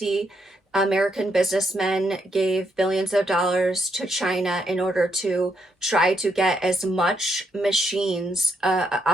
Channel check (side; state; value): both; normal; correlation 0.77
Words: American businessmen gave billions of dollars to China in order to try to get as much machines